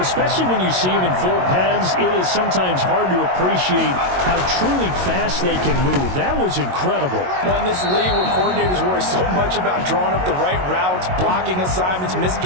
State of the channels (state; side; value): late; left; 22 ms